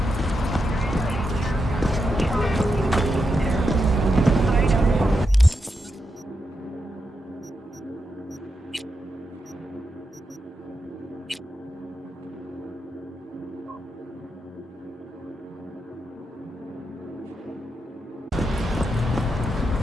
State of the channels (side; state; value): both; normal; correlation 0.85